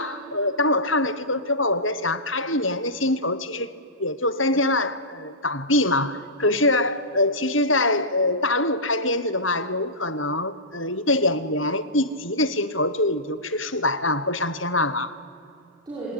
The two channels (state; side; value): normal; both; correlation -0.18